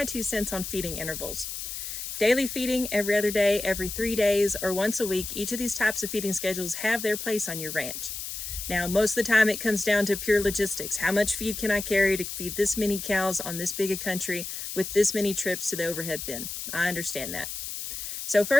2 cents on feeding intervals. Daily feeding, every other day, every 3 days, or once a week, each of these types of feeding schedules have their place on your ranch. Now, most of the time it comes down to pure logistics. How much feed can I carry to feed this many cows on this big a country with this many trips to the overhead bin? I understand that. So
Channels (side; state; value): left; noise; hiss, 7 dB below the sound